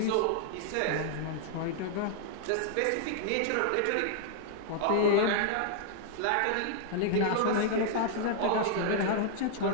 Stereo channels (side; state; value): both; different; correlation -0.01